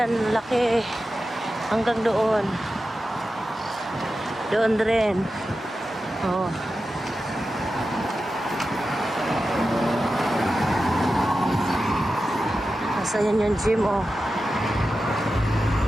laki. Hanggang doon. Doon rin. Oh. Nasa yan yung gym, oh.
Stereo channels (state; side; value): normal; both; correlation 0.92